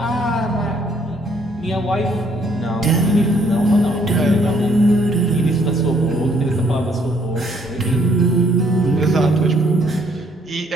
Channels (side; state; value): both; normal; correlation 0.66